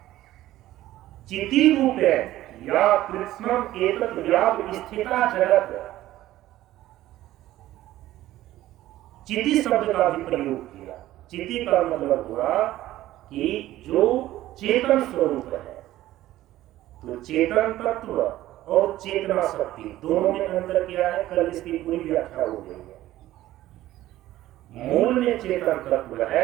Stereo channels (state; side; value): quieter; left; 14.9 dB